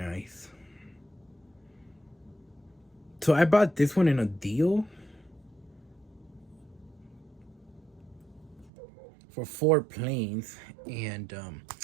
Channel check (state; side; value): drops out; left; at 8.7 s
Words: So I bought this one in a deal for 4 planes, and